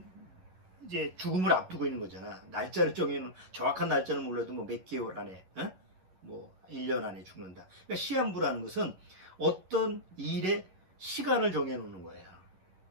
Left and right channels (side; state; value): left; late; 11 ms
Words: 죽음을 앞두고 있는 거잖아. 날짜를 정해놓은, 정확한 날짜는 몰라도 뭐 몇 개월 안에, 뭐 1년 안에 죽는다. 그러니까 시한부라는 것은 어떤 일의 시간을 정해놓는 거예요.